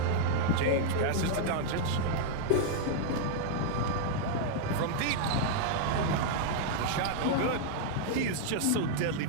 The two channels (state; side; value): different; both; correlation -0.01